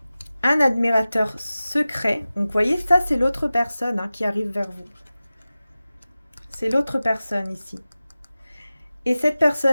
Un admirateur secret. Donc, vous voyez, ça, c'est l'autre personne hein, qui arrive vers vous. C'est l'autre personne ici. Et cette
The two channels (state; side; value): inverted; both; correlation -0.96